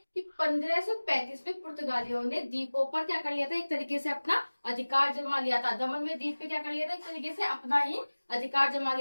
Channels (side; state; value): both; inverted; correlation -1.00